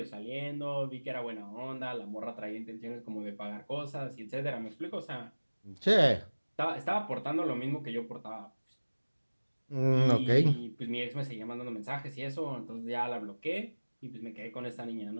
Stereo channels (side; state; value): both; inverted; correlation -1.00